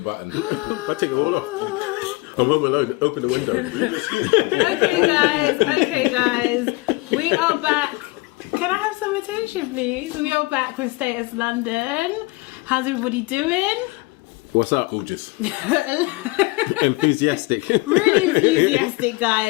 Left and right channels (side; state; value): right; quieter; 24.1 dB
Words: I take it all off. I'm home alone. Open the window. Leave your skin. Okay, guys. We are back. Can I have some attention, please? We are back with Status London. How's everybody doing? What's up? Gorgeous. Enthusiastic. Really enthusiastic,